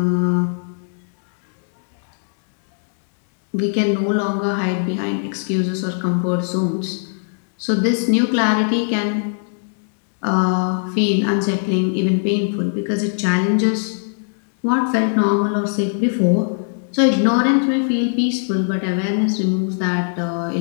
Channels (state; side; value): silent; right; digital silence